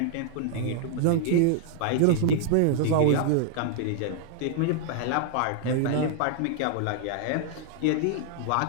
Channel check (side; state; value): both; different; correlation -0.01